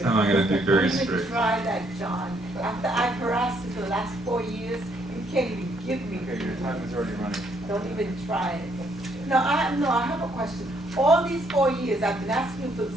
time I'm gonna be very Don't even strict. try that, John. After I've harassed you for the last 4 years, you can't even give me. Okay, your time is already running. Don't even try it. No, I have a question. All these 4 years, I've been asking you for the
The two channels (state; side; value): noise; left; hum, 27 dB below the sound